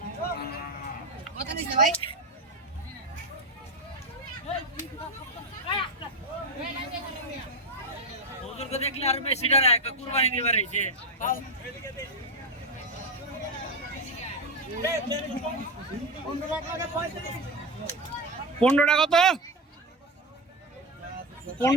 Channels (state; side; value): normal; both; correlation 0.13